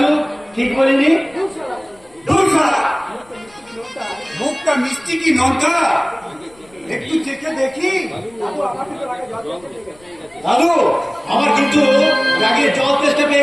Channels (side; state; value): left; noise; rumble, 29 dB below the sound